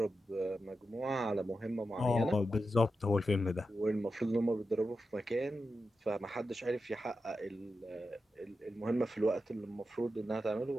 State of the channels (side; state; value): both; normal; correlation 0.90